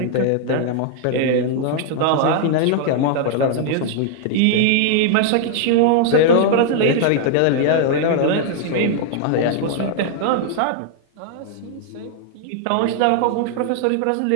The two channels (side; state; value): both; different; correlation -0.01